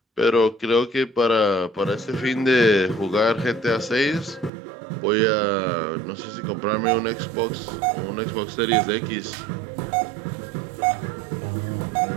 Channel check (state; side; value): drops out; left; at 4.5 s